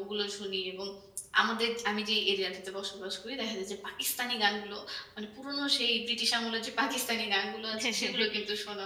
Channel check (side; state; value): both; identical; correlation 1.00